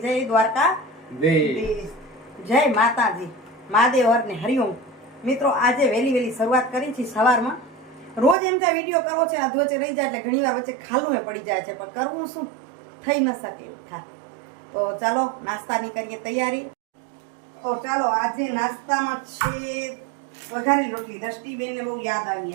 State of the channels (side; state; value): left; drops out; at 8.3 s